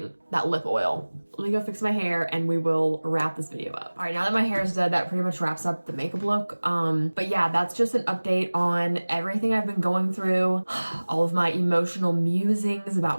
That lip oil. Let me go fix my hair and we will wrap this video up. All right, now that my hair is done, that pretty much wraps up the makeup look. But yeah, that's just an update on everything I've been going through, all of my emotional musings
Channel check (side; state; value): both; inverted; correlation -1.00